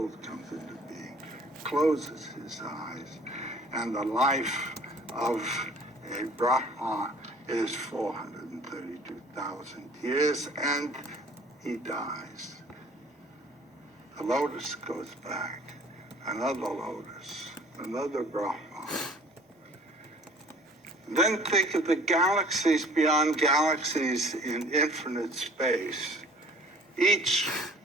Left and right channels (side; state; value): both; normal; correlation 0.51